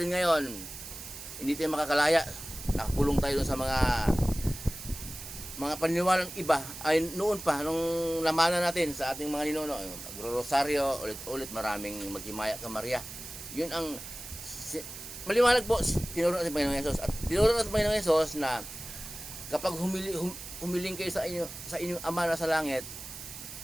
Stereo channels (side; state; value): right; noise; hiss, 11 dB below the sound